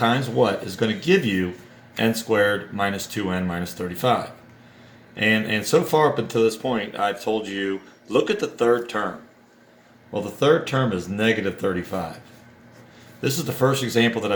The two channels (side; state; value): both; identical; correlation 1.00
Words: what is going to give you n squared minus 2n minus 35. And so far up until this point, I've told you, look at the third term. Well, the third term is negative 35. This is the first example that